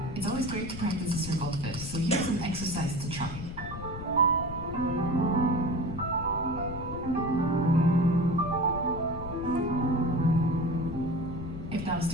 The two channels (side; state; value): left; noise; rumble, 9 dB below the sound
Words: It's always great to practice a circle fifth, so here's an exercise to try. If that was